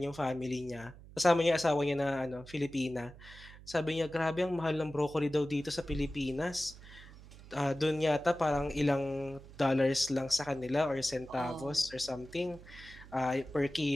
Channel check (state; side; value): noise; right; hum, 19 dB below the sound